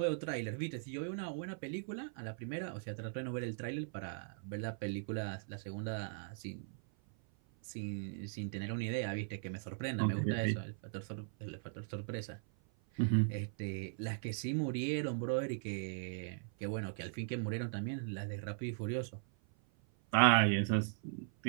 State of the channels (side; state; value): left; silent; 52 dB below the other